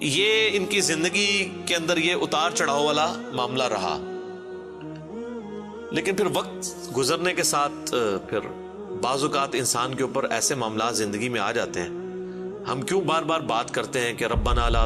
یہ ان کی زندگی کے اندر یہ اتار چڑھاؤ والا معاملہ رہا. لیکن پھر وقت گزرنے کے ساتھ پھر بعض اوقات انسان کے اوپر ایسے معاملات زندگی میں آ جاتے ہیں. ہم کیوں بار بار بات کرتے ہیں کہ ربنا لا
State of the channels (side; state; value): both; identical; correlation 1.00